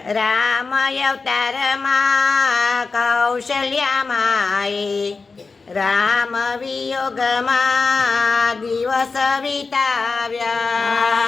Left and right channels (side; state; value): right; quieter; 4.3 dB